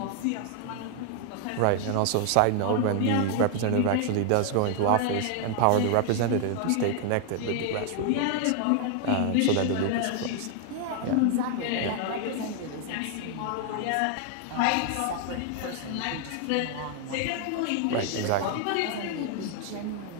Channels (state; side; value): different; both; correlation 0.00